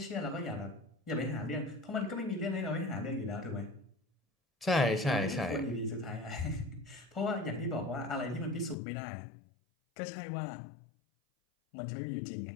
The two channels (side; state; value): right; drops out; at 8.8 s